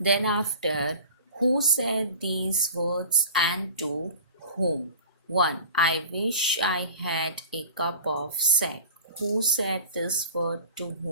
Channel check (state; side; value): inverted; both; correlation -0.40